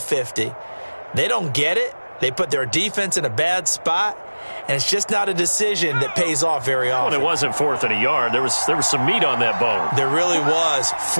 They don't get it. They put their defense in a bad spot, and it's just not a decision that pays off very often. Well, it wasn't 4th and a yard. There was some meat on that bone. There really was.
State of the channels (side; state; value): both; inverted; correlation -1.00